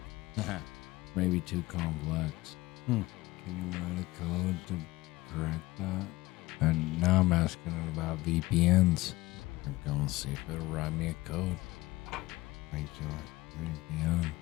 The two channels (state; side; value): quieter; right; 19.5 dB